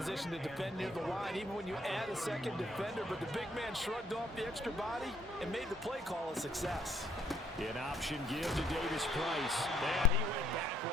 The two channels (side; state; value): both; normal; correlation 0.67